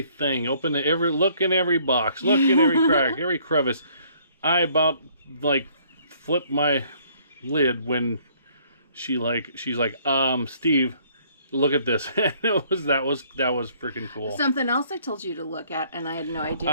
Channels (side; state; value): both; inverted; correlation -0.62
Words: Look in every box. Look in every crack, every crevice. I about like flipped my lid when she's like, Steve, look at this. And that was freaking cool. Something else I told you to look at, and I had no idea